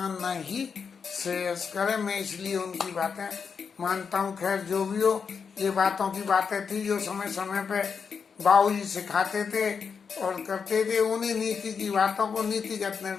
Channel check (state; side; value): quieter; right; 6.0 dB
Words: ही श्रेयस्कर है। मैं इसलिए उनकी बातें मानता हूँ। खैर जो भी हो, ये बातों की बातें थी जो समय समय पे बाबूजी सिखाते थे और करते थे। उन्हीं नीति की बातों को नीतिगत